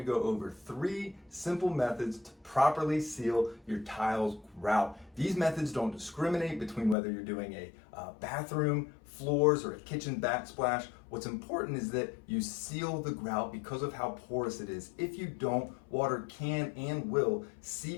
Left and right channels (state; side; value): drops out; right; at 7.0 s